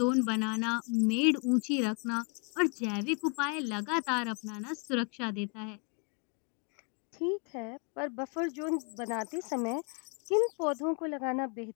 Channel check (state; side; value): quieter; right; 35.0 dB